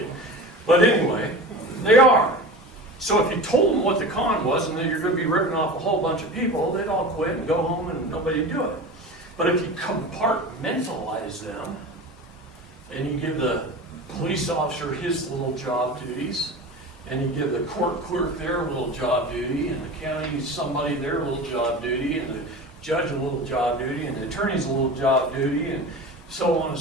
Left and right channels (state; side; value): normal; both; correlation 0.32